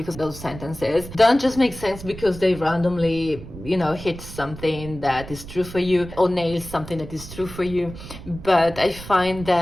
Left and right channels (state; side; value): noise; right; rumble, 13 dB below the sound